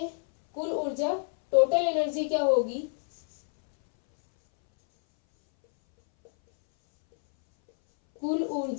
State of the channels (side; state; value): right; silent; 60 dB below the other